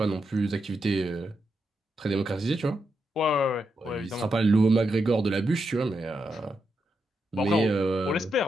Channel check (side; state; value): both; normal; correlation 0.84